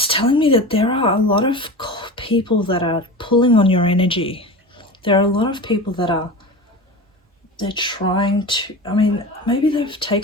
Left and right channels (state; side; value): normal; both; correlation 0.30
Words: telling me that there are a lot of people that are pulling on your energy. There are a lot of people that they're trying to, maybe they've